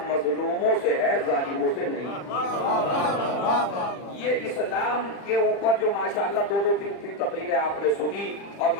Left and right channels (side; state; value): right; late; 40 ms